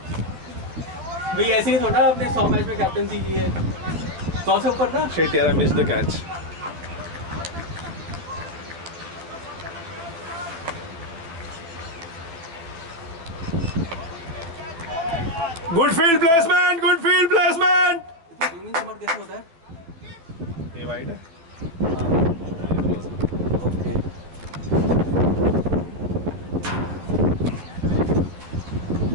भाई, ऐसे ही थोड़ा आपने 100 मैच में कैप्टनसी की है, 100 से ऊपर ना। शिट यार, I miss the catch. Good field placement, good field placement. Swimming summer कैसे होता है? ये वाइड है। ओके,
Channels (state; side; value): late; left; 12 ms